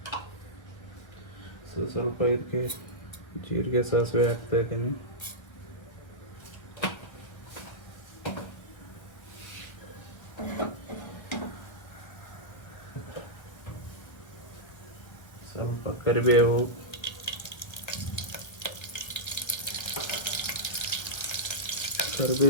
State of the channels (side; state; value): right; late; 1.5 ms